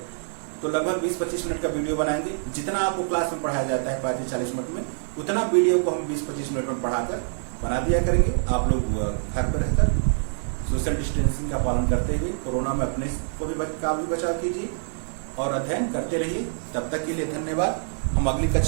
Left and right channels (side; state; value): left; silent; digital silence